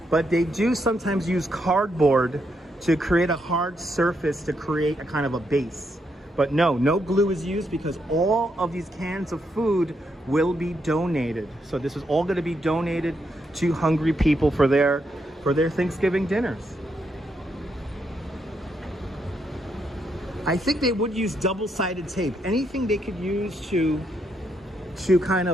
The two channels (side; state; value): both; normal; correlation 0.79